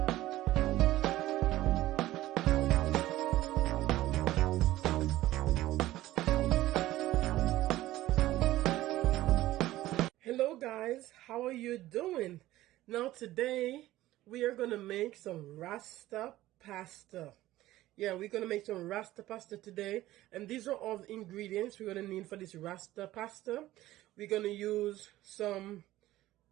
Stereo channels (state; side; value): quieter; left; 15.8 dB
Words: Hello guys, how are you doing? Now today we are gonna make some Rasta pasta. Yeah, we're gonna make some Rasta pasta today, and these are all the ingredients we're gonna need for this Rasta pasta. We're gonna use some